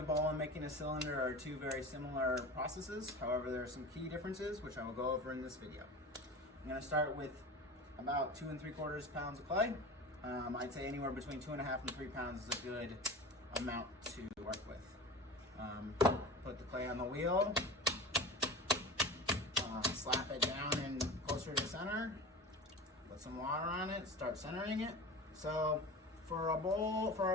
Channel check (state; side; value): normal; both; correlation 0.32